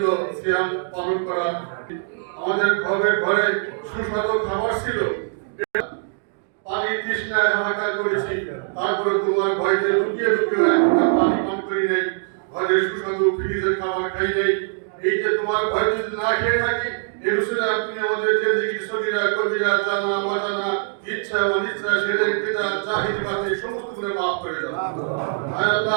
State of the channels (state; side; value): silent; left; digital silence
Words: সিয়াম পালন করা আমাদের ঘরে ঘরে সুস্বাদু খাবার ছিল পানি তৃষ্ণায় হাহাকার করেছি তারপরে তোমার ভয়তে লুকিয়ে লুকিয়ে একটা পানি পান করি নাই ঘরে সুস্বাদু ফ্রিজের খাবার খাই নাই এই যে তোমার ভয় যদি না খেয়ে থাকি এই রসুলে আপনি আমাদের জিন্দেগির সগীরা কবিরা জানা অজানা ইচ্ছা অনিচ্ছা শিরক বিদআত জাহিল বাতিল সমস্ত গুনাহ মাফ করে দাও আয়